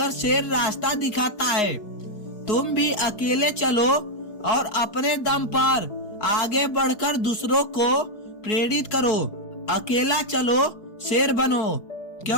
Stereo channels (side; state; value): right; late; 4.7 ms